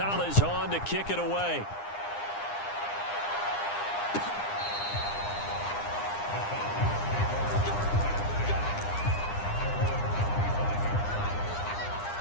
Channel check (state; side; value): late; right; 9.8 ms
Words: on to kick it away.